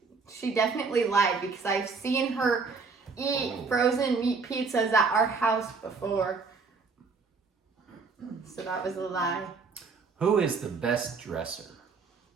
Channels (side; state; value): left; quieter; 4.7 dB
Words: she definitely lied because I've seen her eat frozen meat pizzas at our house before. So that was a lie. Who is the best dresser?